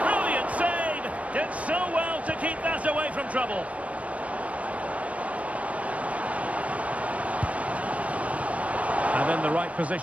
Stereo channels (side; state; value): left; late; 0.065 ms